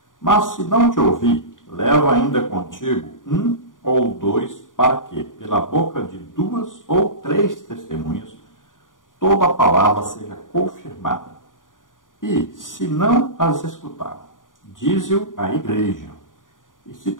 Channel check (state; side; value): late; right; 0.89 ms